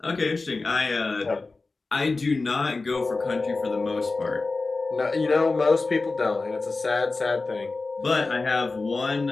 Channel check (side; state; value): right; quieter; 3.7 dB